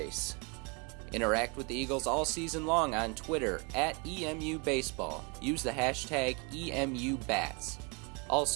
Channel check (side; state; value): left; quieter; 31.4 dB